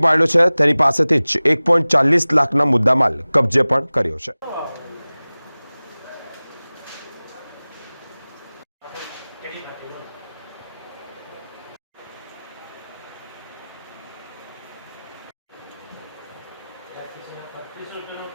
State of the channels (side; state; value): both; inverted; correlation -0.99